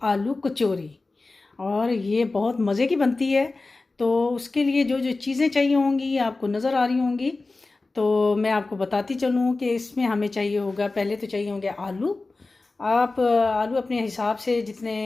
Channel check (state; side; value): quieter; right; 3.5 dB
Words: आलू कचौरी। और ये बहुत मज़े की बनती है। तो उसके लिए जो जो चीज़ें चाहिए होंगी आपको नज़र आ रही होंगी, तो मैं आपको बताती चलूँ कि इसमें हमें चाहिए होगा। पहले तो चाहिए होंगे आलू। आप आलू अपने हिसाब से, जितने